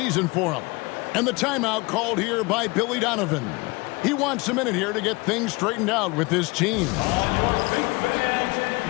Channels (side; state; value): right; quieter; 25.0 dB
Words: for him. And the timeout called here by Billy Donovan. He wants a minute here to get things straightened out with his team. On your feet, fans,